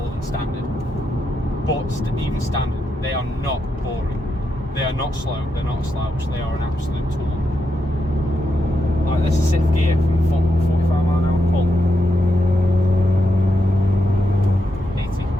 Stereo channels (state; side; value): normal; both; correlation 0.83